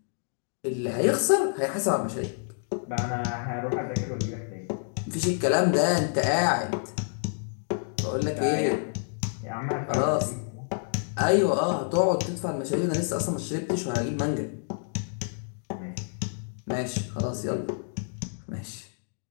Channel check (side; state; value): right; silent; digital silence